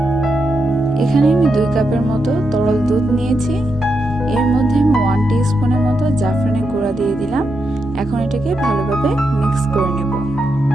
এখানে আমি 2 কাপের মতো তরল দুধ নিয়েছি। এর মধ্যে আমি 1 টিস্পুনের মতো জাফরানের গুঁড়া দিয়ে দিলাম। এখন এটাকে ভালোভাবে মিক্স করে নেব।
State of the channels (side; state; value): both; normal; correlation 0.84